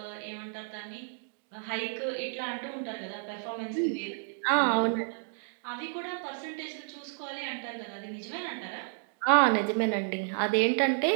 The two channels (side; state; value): left; silent; digital silence